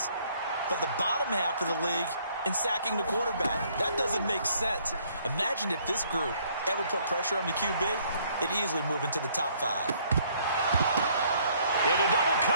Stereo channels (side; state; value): both; inverted; correlation -0.64